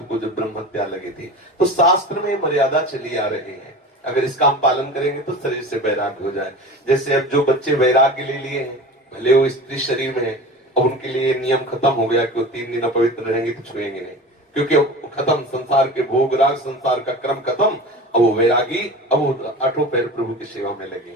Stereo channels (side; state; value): both; normal; correlation 0.34